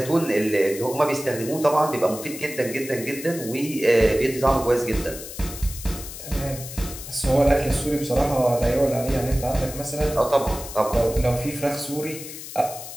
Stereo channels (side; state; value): left; noise; hiss, 11 dB below the sound